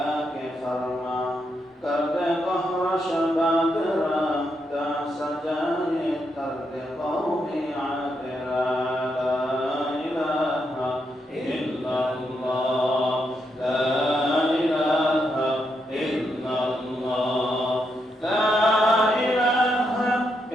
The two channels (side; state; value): both; normal; correlation 0.81